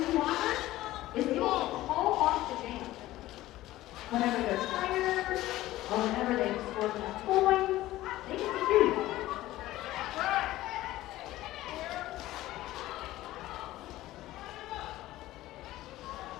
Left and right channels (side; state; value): right; quieter; 16.0 dB